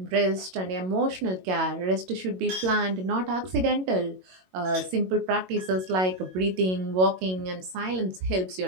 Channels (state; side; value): late; left; 22 ms